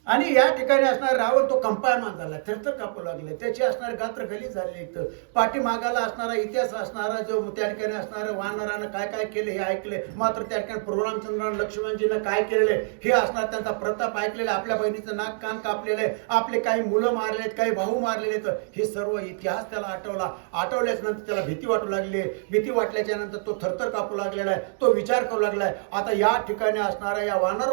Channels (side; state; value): left; silent; digital silence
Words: आणि या ठिकाणी असणार रावण तो कंपायमान झाला, थरथर कापू लागले, त्याची असणारे गात्र गलीच झाले. इथं पाठीमागाला असणारा इतिहास असणारा जो त्या ठिकाणी असणारं वानरानं काय काय केले हे ऐकले, मात्र त्या ठिकाणी प्रभुरामचंद्रानं लक्ष्मणजीनं काय केलेले हे असणार त्यांचा प्रताप ऐकलेला, आपल्या बहिणीचं नाक कान कापलेलं आहे, आपले काही मुलं मारलेत, काही भाऊ मारलेले आहेत, हे सर्व इतिहास त्याला आठवल्याच नंतर त्याला भीती वाटू लागली. भीती वाटल्याच्या नंतर तो थरथर कापू लागलेला आहे, तो विचार करू लागलाय आता या ठिकाणी असणाऱ्या या